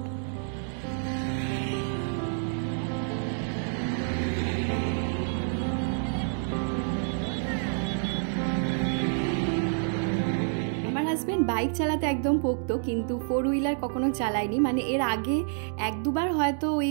হাজবেন্ড বাইক চালাতে একদম পোক্ত, কিন্তু 4 হুইলার কখনো চালায়নি। মানে এর আগে 1-2বার হয়তো ওই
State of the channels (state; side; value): silent; left; 59 dB below the other